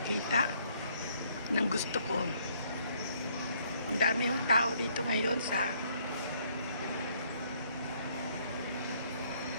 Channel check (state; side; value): inverted; both; correlation -0.66